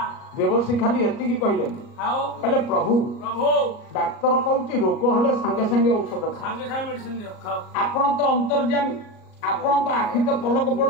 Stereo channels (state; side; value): late; right; 38 ms